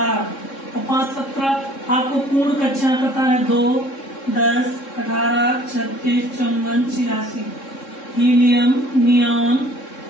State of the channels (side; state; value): right; late; 3.7 ms